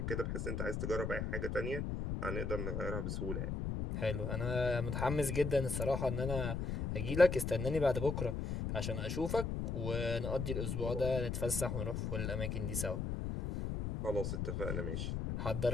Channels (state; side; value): noise; left; rumble, 2 dB below the sound